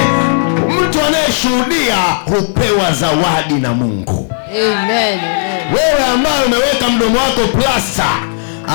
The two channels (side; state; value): right; silent; digital silence